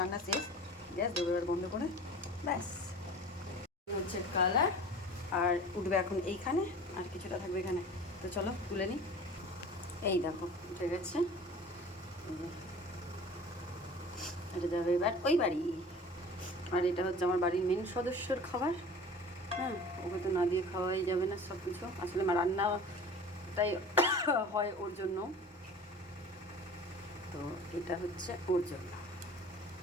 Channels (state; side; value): normal; both; correlation 0.41